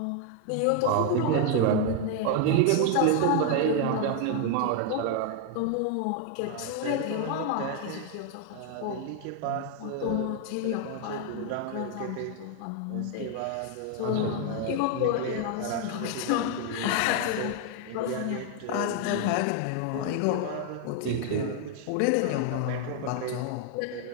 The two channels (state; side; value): different; both; correlation 0.00